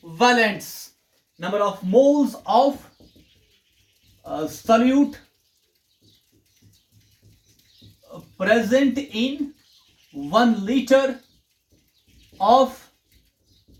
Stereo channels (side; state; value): both; identical; correlation 1.00